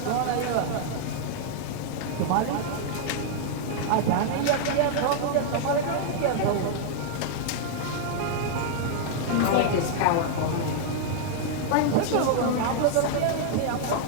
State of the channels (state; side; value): different; both; correlation -0.01